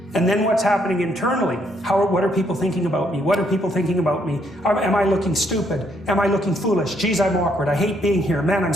And then what's happening internally? What are people thinking about me? What are people thinking about me? Am I looking stupid? Am I looking foolish? Geez, I'm awkward. I hate being here. Man, I'm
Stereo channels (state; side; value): normal; both; correlation 0.71